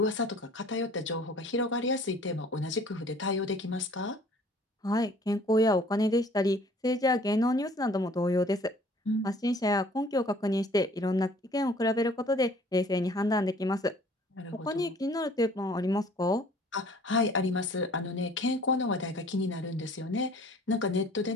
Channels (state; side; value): normal; both; correlation 0.53